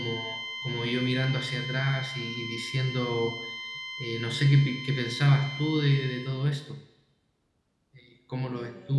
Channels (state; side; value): identical; both; correlation 1.00